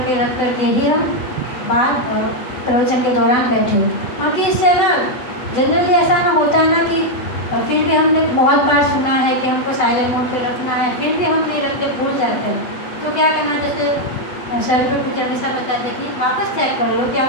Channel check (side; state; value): right; late; 8.0 ms